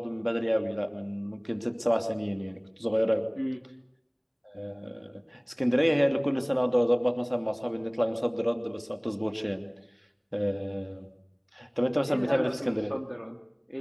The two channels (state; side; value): identical; both; correlation 1.00